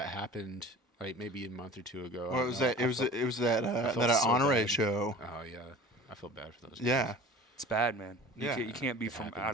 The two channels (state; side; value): normal; both; correlation 0.41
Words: happened like maybe a month or 2 ago. Well, it was that. It was that felt so honore bad. show. Oh yeah, I feel bad for those. guys. Yeah. It's bad, man. Yeah. You can't be from out of